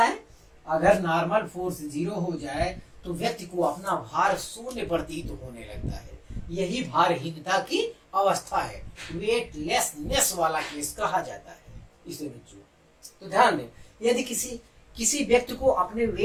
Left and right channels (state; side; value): identical; both; correlation 1.00